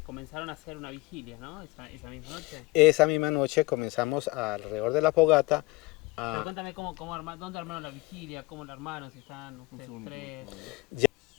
comenzaron a hacer una vigilia, ¿no? Esa misma noche. Esa misma noche comenzamos alrededor de la fogata Pero cuéntame dónde armaron la vigilia, cómo la armaron, si están ustedes tres.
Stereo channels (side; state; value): right; quieter; 22.2 dB